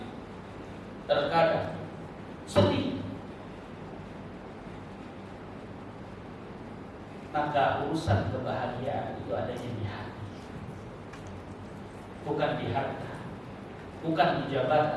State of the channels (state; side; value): identical; both; correlation 1.00